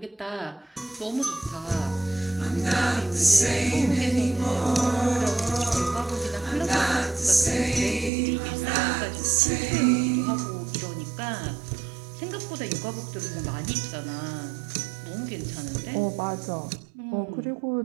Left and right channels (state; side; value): drops out; left; at 8.1 s